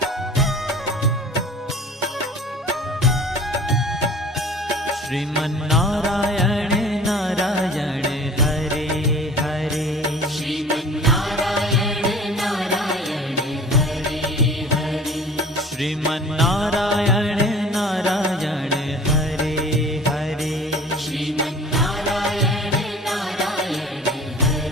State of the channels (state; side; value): normal; both; correlation 0.45